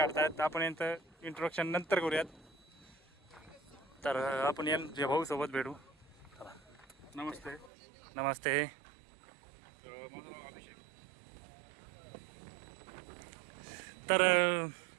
आपण यांचं इंट्रोडक्शन नंतर करूयात. तर आपण यांच्या भाऊसोबत भेटू. चला. नमस्ते. नमस्ते. माझं नाव अभिषेक. तर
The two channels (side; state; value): left; drops out; at 7.7 s